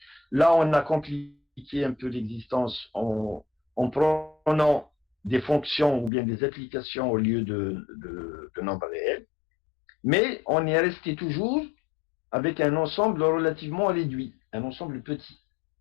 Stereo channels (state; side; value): drops out; right; at 6.1 s